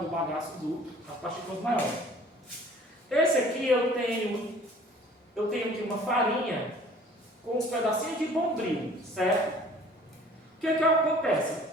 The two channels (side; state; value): both; normal; correlation 0.51